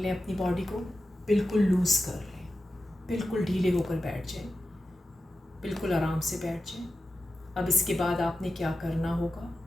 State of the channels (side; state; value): both; normal; correlation 0.92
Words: अपनी बॉडी को, बिल्कुल लूज कर लें, बिल्कुल ढीले होकर बैठ जाएं, बिल्कुल आराम से बैठ जाएं. अब इसके बाद आपने क्या करना होगा,